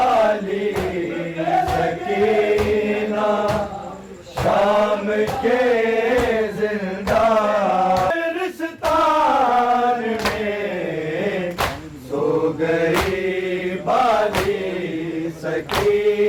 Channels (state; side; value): identical; both; correlation 1.00